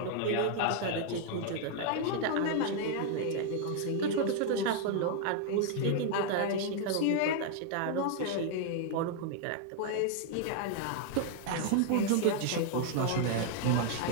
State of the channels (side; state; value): both; different; correlation 0.00